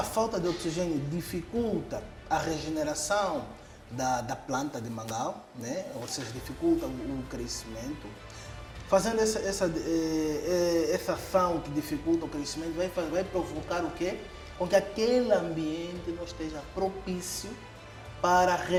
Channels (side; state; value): both; identical; correlation 1.00